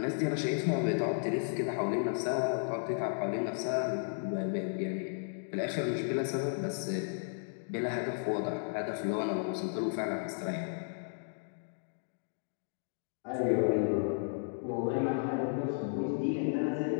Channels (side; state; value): right; silent; digital silence